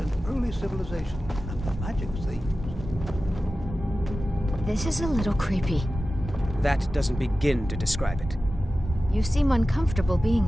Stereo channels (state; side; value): normal; both; correlation 0.94